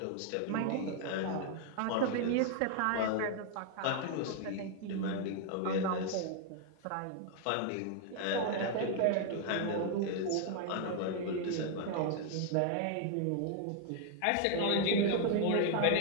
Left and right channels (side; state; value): both; different; correlation 0.00